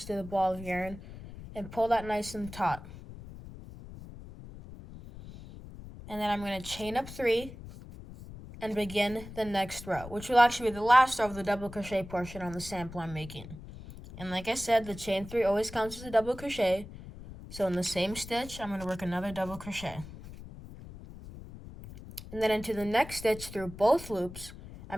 to the ball of yarn and pull that nice and taut. And then I'm going to chain up 3 and begin the next row, which will actually be the last row of the double crochet portion on the sample I'm making. And like I said, the chain 3 always counts as a double crochet. So in the same stitch, I'm going to work another double crochet. And then into the next stitch through both loops,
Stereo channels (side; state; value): left; noise; rumble, 14 dB below the sound